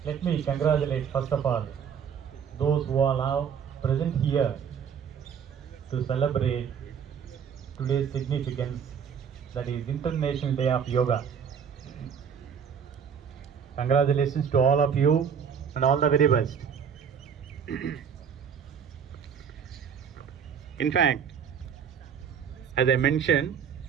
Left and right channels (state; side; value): quieter; left; 7.3 dB